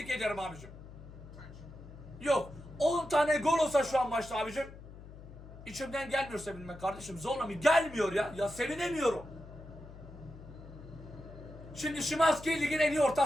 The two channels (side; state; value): left; noise; hum, 16 dB below the sound